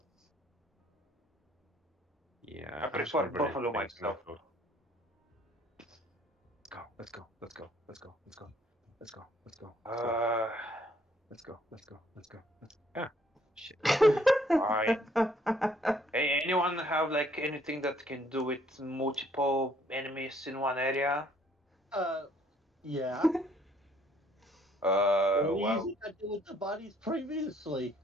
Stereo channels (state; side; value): normal; both; correlation 0.64